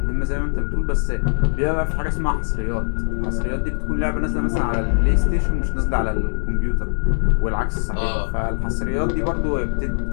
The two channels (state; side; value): silent; right; digital silence